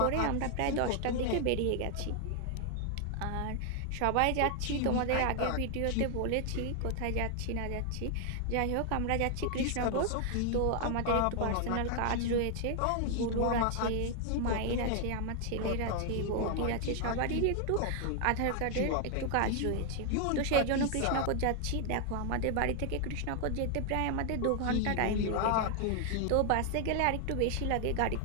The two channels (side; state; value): both; different; correlation 0.00